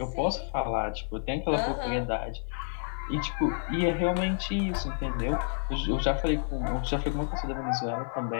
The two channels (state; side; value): silent; right; digital silence